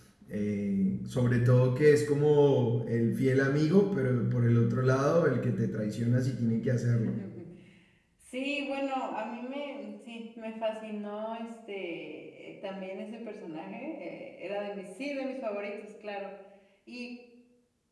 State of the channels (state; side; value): identical; both; correlation 1.00